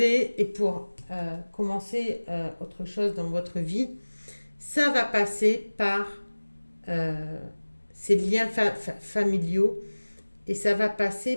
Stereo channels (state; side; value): inverted; both; correlation -1.00